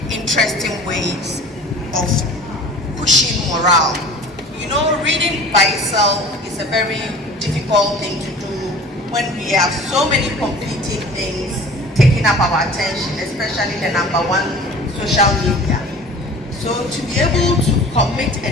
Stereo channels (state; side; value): normal; both; correlation 0.43